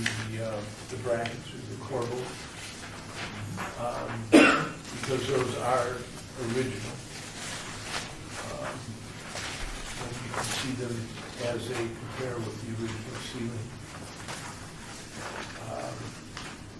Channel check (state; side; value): identical; both; correlation 1.00